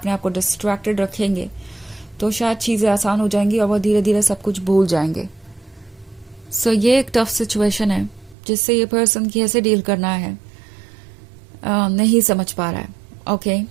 आप को डिस्ट्रैक्टेड रखेंगे तो शायद चीज़ें आसान हो जाएंगी और वो धीरे धीरे सब कुछ भूल जाएंगे। सो ये एक टफ सिचुएशन है जिससे ये पर्सन कैसे डील करना है नहीं समझ पा रहा है। ओके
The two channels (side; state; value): left; drops out; at 8.3 s